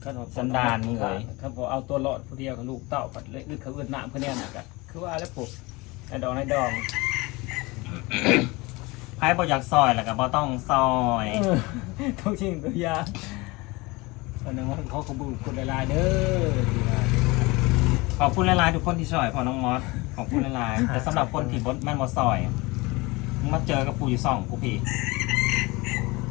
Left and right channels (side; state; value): right; quieter; 23.7 dB